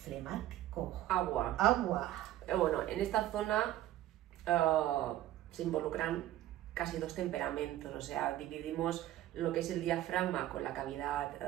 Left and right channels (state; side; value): quieter; left; 13.9 dB